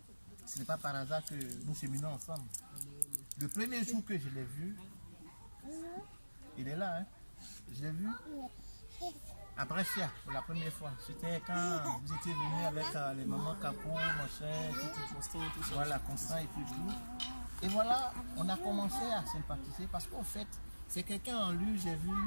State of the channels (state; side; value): inverted; both; correlation -1.00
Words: ce n'est pas par hasard que nous cheminons ensemble. Le premier jour que je l'ai vu, Il est là, hein. Je l'ai vu à Brescia pour la première fois. C'était quand vous étiez venu avec les mamans Capo, machin, tout. Voilà, Constant et tout. Et voilà, on a commencé à sympathiser parce qu'en fait, c'est quelqu'un en lui, j'ai vu